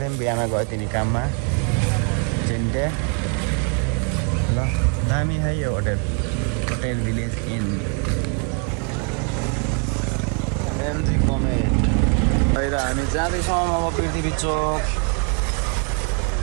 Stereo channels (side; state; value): left; quieter; 36.2 dB